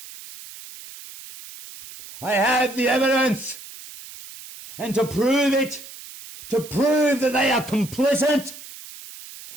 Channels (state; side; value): noise; right; hiss, 16 dB below the sound